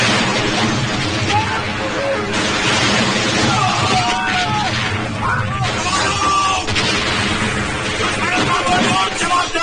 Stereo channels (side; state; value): both; identical; correlation 1.00